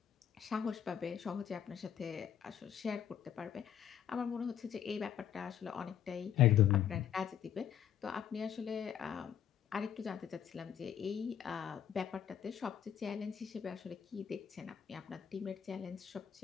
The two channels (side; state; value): right; quieter; 9.3 dB